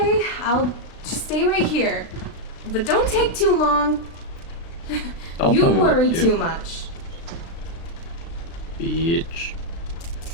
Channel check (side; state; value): right; late; 36 ms